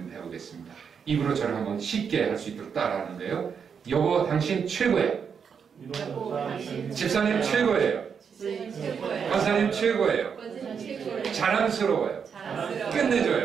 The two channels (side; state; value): left; quieter; 6.7 dB